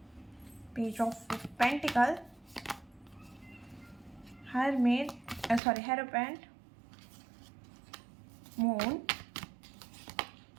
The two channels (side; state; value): left; drops out; at 5.6 s